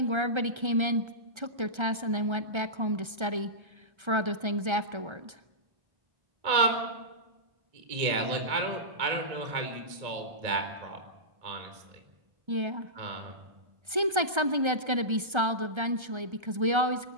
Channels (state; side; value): late; left; 1.3 ms